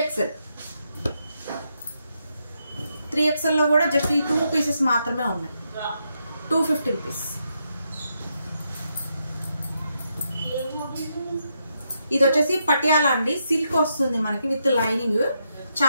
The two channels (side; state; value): both; inverted; correlation -0.81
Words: 3XL లో కూడా జస్ట్ ఈ 2 పీసెస్ మాత్రమే ఉన్నాయి. 250 రూపీస్. ఇది వచ్చేసి పటియాలా అండి. సిల్క్ వస్తుంది మనకి విత్ లైనింగ్.